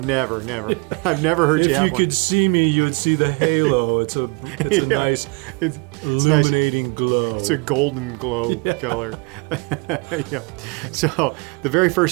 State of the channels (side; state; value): left; quieter; 31.6 dB